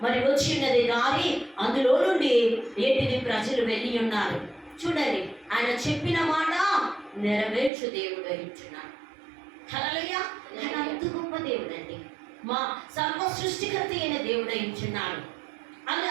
మరి వచ్చిన్నది దారి, అందులో నుండి ఏంటిది ప్రజలు వెళ్ళి ఉన్నారు. చూడండి, ఆయన చెప్పిన మాట నెరవేర్చు దేవుడు ఇచ్చున్నాడు. హల్లెలూయా. ఆయన అంత గొప్ప దేవుడు అండి, మా సర్వ సృష్టికర్త అయిన దేవుడు ఇచ్చున్నాడు.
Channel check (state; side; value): drops out; left; at 7.7 s